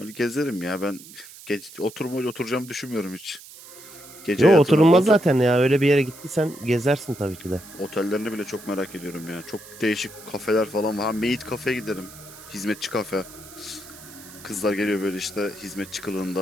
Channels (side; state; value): right; noise; hiss, 18 dB below the sound